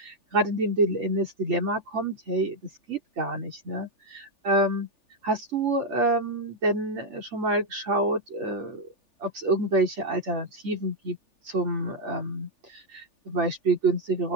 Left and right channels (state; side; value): late; left; 3.4 ms